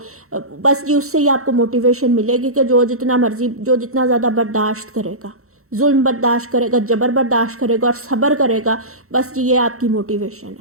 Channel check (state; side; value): late; left; 0.64 ms